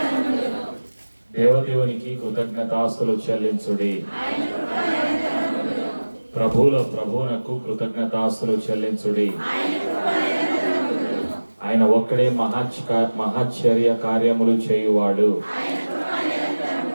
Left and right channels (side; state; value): both; inverted; correlation -1.00